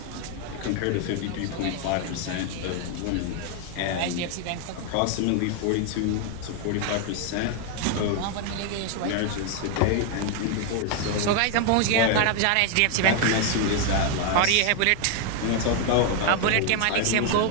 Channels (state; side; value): different; both; correlation 0.00